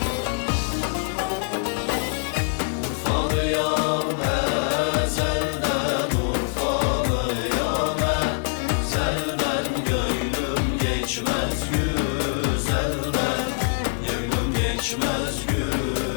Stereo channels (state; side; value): silent; right; 63 dB below the other